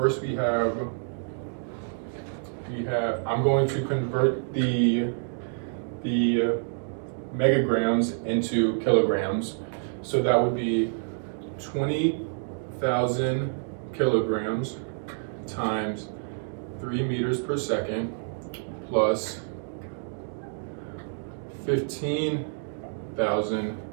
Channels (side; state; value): left; silent; digital silence